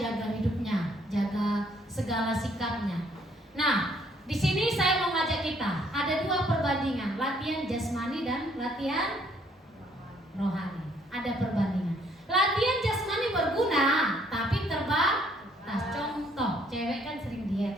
hidupnya, jaga segala sikapnya. Nah, di sini saya mau ngajak kita, ada 2 perbandingan, latihan jasmani dan latihan rohani. Ada perbandingan. Latihan jasmani berguna, tapi terbatas. Contoh, cewek kan sering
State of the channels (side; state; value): both; normal; correlation 0.65